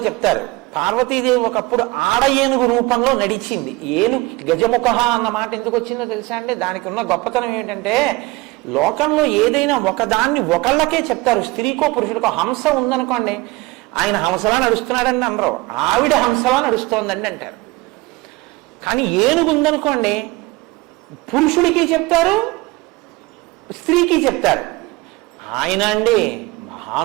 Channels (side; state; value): left; quieter; 21.6 dB